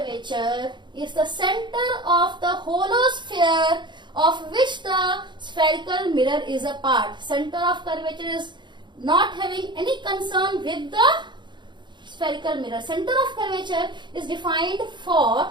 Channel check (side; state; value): left; late; 0.22 ms